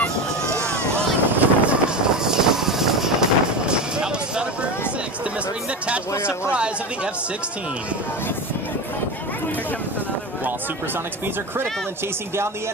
Demonstrating the tactical surprise of the F-16. While supersonic speeds are critical in chasing down the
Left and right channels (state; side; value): normal; both; correlation 0.23